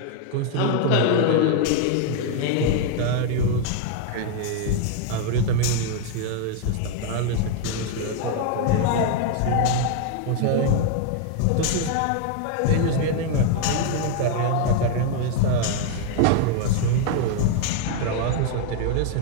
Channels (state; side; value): different; both; correlation 0.01